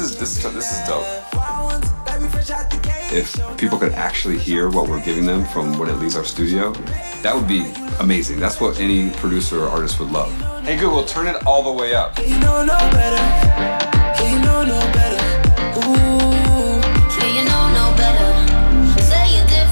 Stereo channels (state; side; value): inverted; both; correlation -1.00